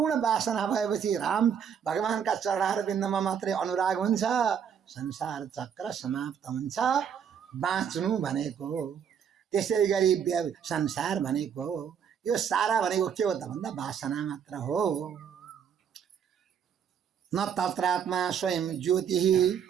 वासना भएपछि राम भगवानका चरणहरू बिन्दमा मात्रै अनुराग हुन्छ, संसार चक्र समाप्त हुन्छ। बाँच्नु भनेको त्यसै गरी संसार भनेको यो सारा भनेको के हो त भन्दा वासना मात्र हो। न तत्रात्मा स्वयं ज्योति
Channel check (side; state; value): left; quieter; 7.9 dB